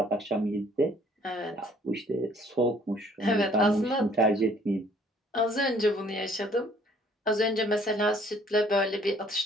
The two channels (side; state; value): both; normal; correlation 0.59